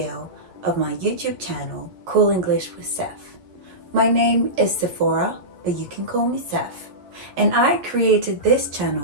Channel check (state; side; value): late; left; 11 ms